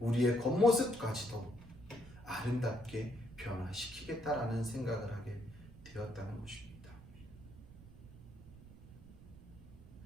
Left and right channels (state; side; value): noise; right; rumble, 18 dB below the sound